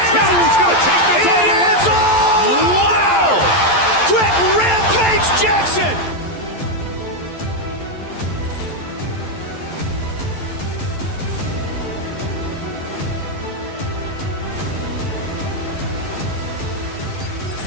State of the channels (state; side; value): late; right; 11 ms